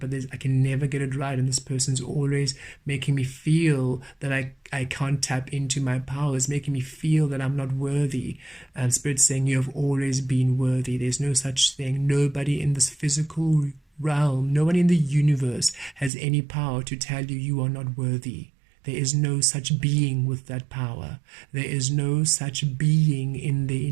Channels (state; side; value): drops out; left; at 16.1 s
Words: I can never get it right, and this person's always making me feel that I can't tap into my powers, making me feel that I'm not worthy. And Spirit's saying you have always been worthy. There's no such thing. Nobody in this physical realm, no one in the universe has any power to tell you you are not worthy. There is no such being with that power. There is no such being in the